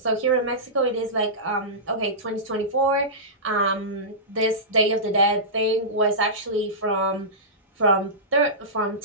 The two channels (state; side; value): normal; both; correlation -0.17